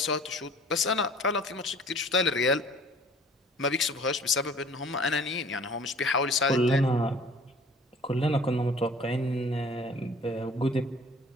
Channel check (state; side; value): normal; both; correlation 0.50